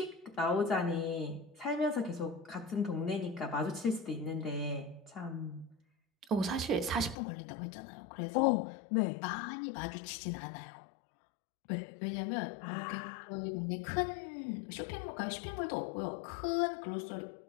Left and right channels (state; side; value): drops out; right; at 7.2 s